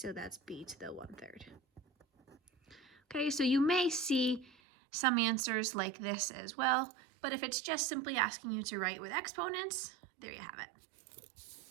that's b to the 1/3. Okay, so you may see some answers like this as well, but if it's just simply asking you to write with exponents, there you have it.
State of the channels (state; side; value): drops out; left; at 4.5 s